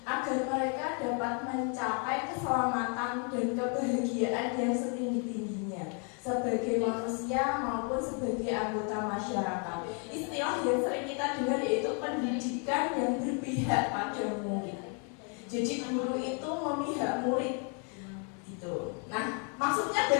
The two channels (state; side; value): quieter; right; 39.0 dB